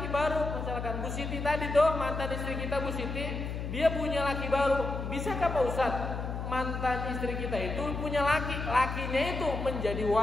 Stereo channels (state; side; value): noise; left; hum, 5 dB below the sound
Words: baru, misalkan Bu Siti tadi tuh mantan istri kita Bu Siti, dia punya laki baru. Bisakah Pak Ustadz mantan istri kita itu punya lakinya itu menjadi